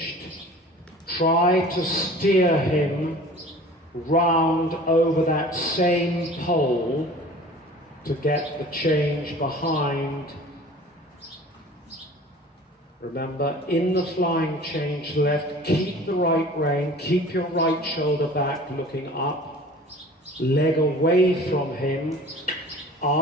try to steer him round over that same pole to get the change behind. Remember, in the flying change left, keep the right rein, keep your right shoulder back looking up, leg away from him,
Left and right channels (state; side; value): normal; both; correlation 0.44